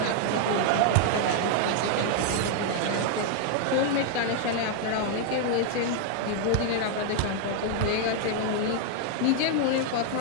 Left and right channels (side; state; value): both; different; correlation 0.00